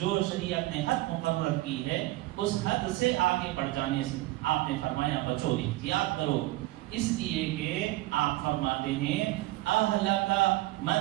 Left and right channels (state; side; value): quieter; left; 18.3 dB